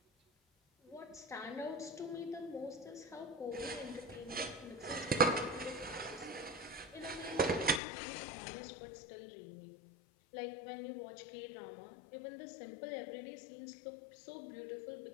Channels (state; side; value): drops out; right; at 7.8 s